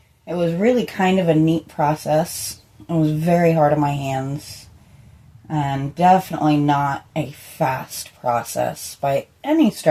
It was really kind of a neat process. It was very hard on my hands, and definitely not a fast process by any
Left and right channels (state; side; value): identical; both; correlation 1.00